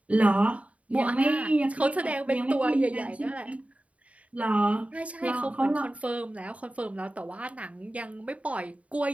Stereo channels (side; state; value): left; late; 0.066 ms